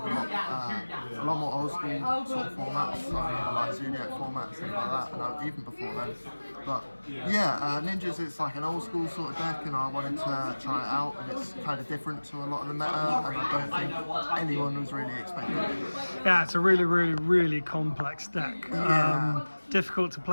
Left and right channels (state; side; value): inverted; both; correlation -1.00